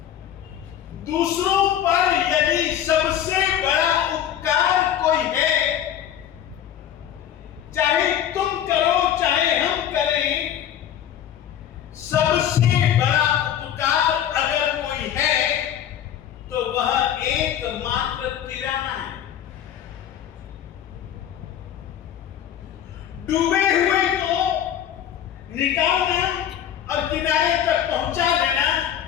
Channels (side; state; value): right; quieter; 10.2 dB